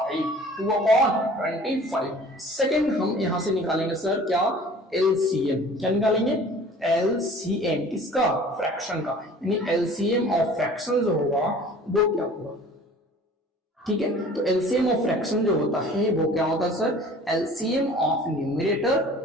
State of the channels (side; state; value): both; normal; correlation 0.47